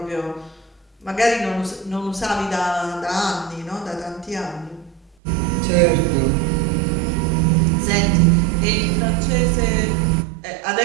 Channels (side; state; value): left; drops out; at 5.2 s